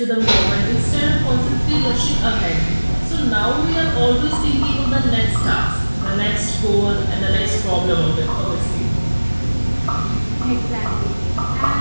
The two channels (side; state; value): both; inverted; correlation -1.00